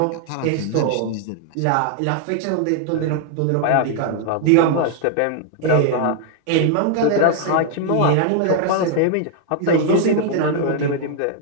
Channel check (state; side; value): different; both; correlation 0.00